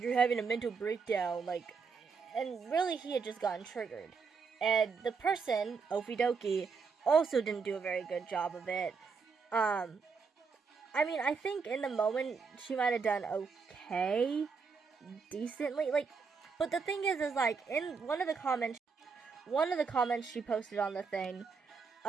having a mental breakdown, like, and really he had just gotten triggered. And the person, Okie Dokie, also didn't do a very good job of it. I mean, I think in the moment she might have done okay, decently, like, but the thing is like, in one of the comments she posted on the thing,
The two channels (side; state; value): left; quieter; 5.2 dB